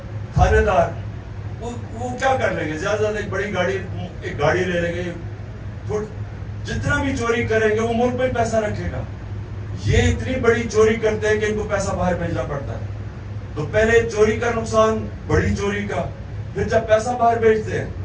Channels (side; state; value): both; identical; correlation 1.00